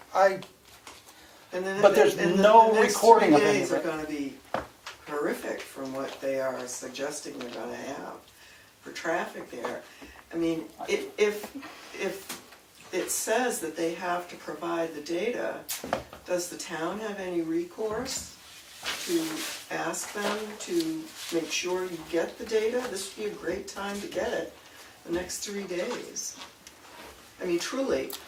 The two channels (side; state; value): both; identical; correlation 1.00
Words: But there's no recording of any of The next 3 days are it. gonna be horrific from what they are suggesting they're gonna have for traffic there. I mean, if it says that they have to provide the data, does the town have any recourse to ask them to make sure you get the data? This would be a great time to get it, the next 3 days. I mean, truly,